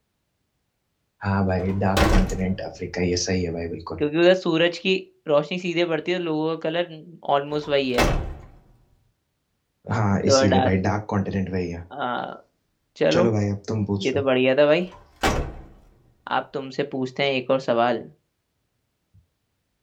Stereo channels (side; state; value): both; identical; correlation 1.00